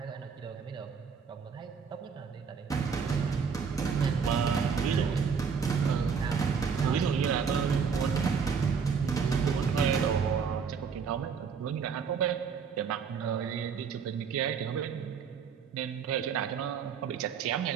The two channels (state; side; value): quieter; left; 6.2 dB